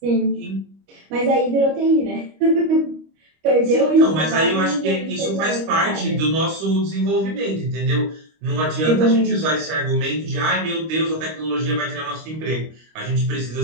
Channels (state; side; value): late; left; 25 ms